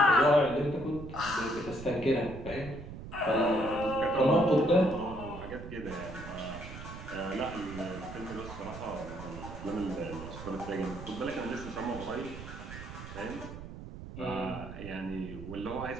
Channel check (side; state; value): right; noise; rumble, 11 dB below the sound